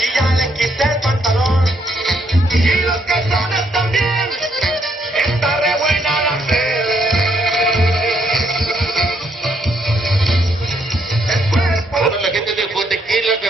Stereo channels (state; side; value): normal; both; correlation 0.73